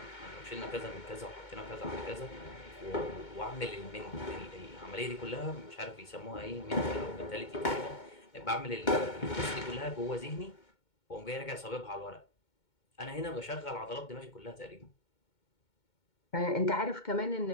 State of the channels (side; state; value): right; late; 2.2 ms